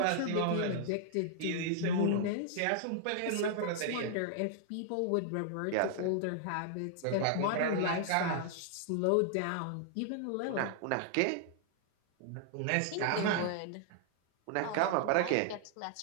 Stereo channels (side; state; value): both; different; correlation 0.00